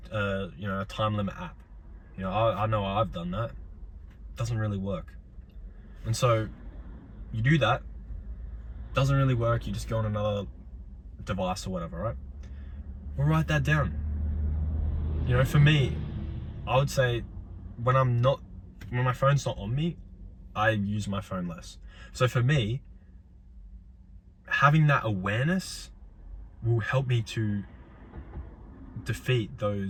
a time limit app. You know, I know I've done that. It doesn't really work. And so you do that, doesn't really work, you just go on another device or whatever, right? Well, write that down. You know, for me, I would say when my phone's not on me, I use my phone less. So for me, having that awareness will help me to defeat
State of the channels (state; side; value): identical; both; correlation 1.00